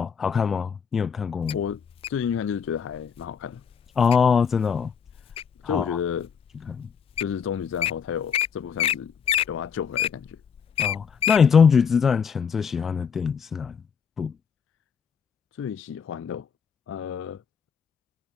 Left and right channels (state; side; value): quieter; right; 6.7 dB